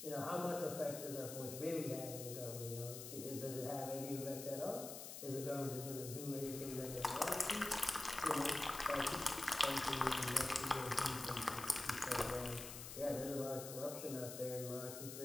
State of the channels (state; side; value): noise; left; hiss, 9 dB below the sound